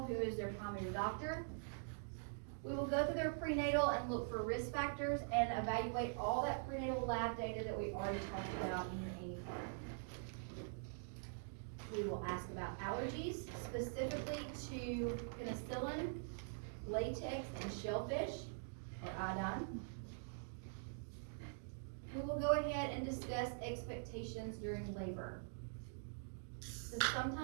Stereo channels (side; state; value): left; silent; digital silence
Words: who is their primary doctor. We will go through their prenatal and look for risk factors and evaluate all that prenatal lab data that we already talked about in your AIM card. We will ask about allergies, specifically to penicillin, latex, and shellfish, or iodine. We will go ahead and discuss expectations during labor. So